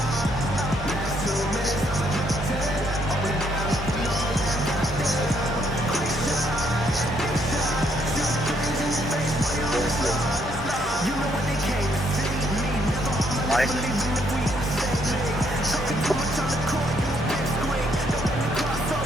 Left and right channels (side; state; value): both; normal; correlation 0.71